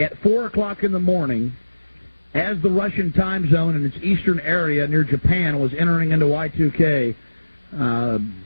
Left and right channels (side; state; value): both; inverted; correlation -1.00